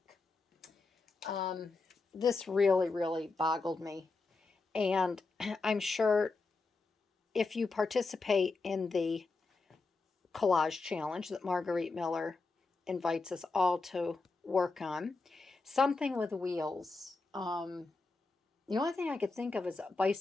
This really boggled me. And I'm sure if you participate in the collage challenge that Margarete Miller invites us all to work on, something with wheels. The only thing I could think of is a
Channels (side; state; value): right; quieter; 3.8 dB